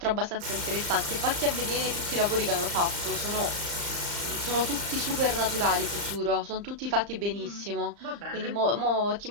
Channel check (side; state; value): left; late; 35 ms